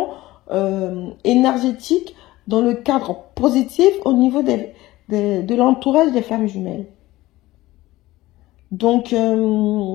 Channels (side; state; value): right; quieter; 17.6 dB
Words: énergétiques dans le cadre positif au niveau de l'entourage des flammes jumelles. Donc,